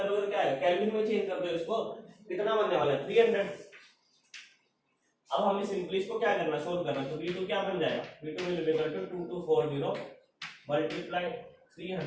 तो क्या आएगा, केल्विन में चेंज कर दो इसको, कितना बनने वाला है 300। अब हमें सिंपली इसको क्या करना, सोल्व करना, तो V2 क्या बन जाएगा, V2 will be equal to 2240 multiply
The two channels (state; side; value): identical; both; correlation 1.00